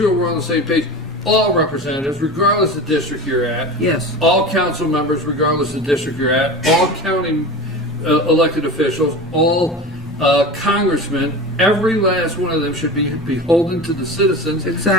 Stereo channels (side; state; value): both; normal; correlation 0.30